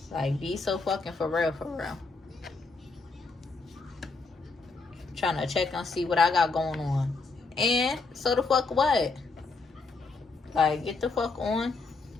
Like, be so fucking for real, for real. Trying to check and see what I got going on. And so the fuck what? Like, get the fuck on.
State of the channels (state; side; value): quieter; right; 4.0 dB